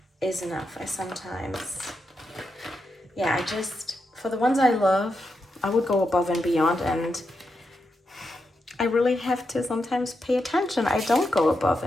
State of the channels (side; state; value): both; normal; correlation 0.85